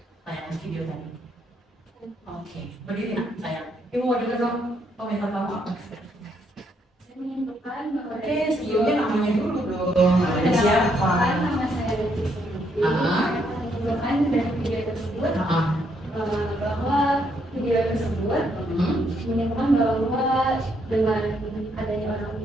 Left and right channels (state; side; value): normal; both; correlation 0.74